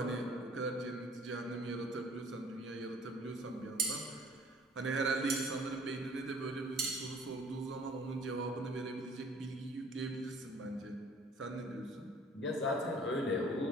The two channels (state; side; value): normal; both; correlation 0.53